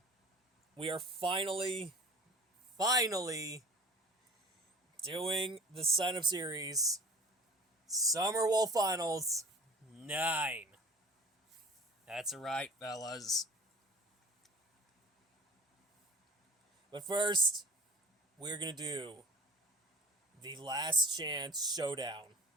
we are finally doing the sign up series Summer Wolf Finals 9. That's right, fellas. But first, we're gonna do the Last Chance Showdown.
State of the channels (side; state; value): both; normal; correlation 0.45